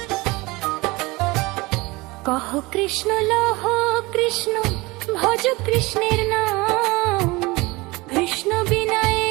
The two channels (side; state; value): left; quieter; 22.9 dB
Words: কহ কৃষ্ণ লহ কৃষ্ণ, ভজ কৃষ্ণের নাম, কৃষ্ণ বিনায়